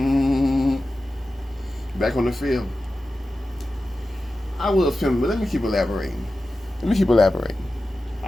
Back on the field. I will film, but let me keep elaborating.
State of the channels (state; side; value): normal; both; correlation 0.93